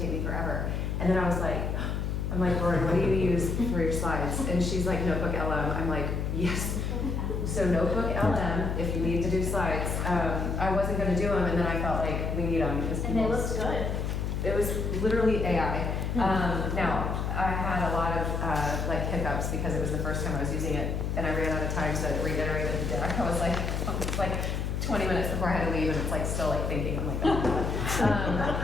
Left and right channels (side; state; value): left; noise; hum, 1 dB below the sound